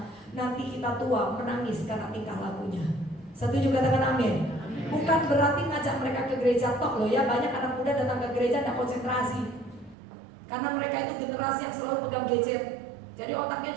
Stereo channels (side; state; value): left; drops out; at 10.0 s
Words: nanti kita tua menangis karena tingkah lakunya. Setuju, katakan amin. Bukan berarti ngajak mereka ke gereja tok loh ya. Banyak anak muda datang ke gereja tidak konsentrasi, karena mereka itu generasi yang selalu pegang gadget. Jadi otaknya